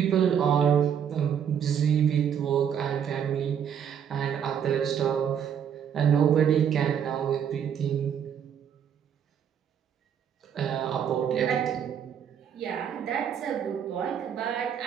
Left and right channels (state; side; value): quieter; left; 8.4 dB